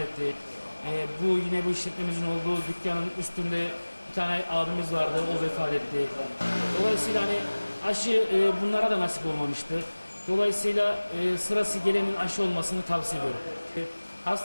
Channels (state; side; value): inverted; both; correlation -1.00